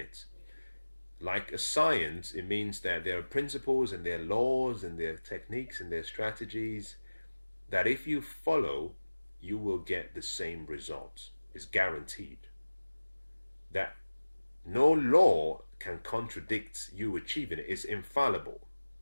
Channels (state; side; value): inverted; both; correlation -1.00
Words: Like a science, it means that there are principles and there are laws and there are techniques and there are strategies that if you follow, you will get the same results. It's guaranteed. That no law can contradict you achieving it. It's infallible.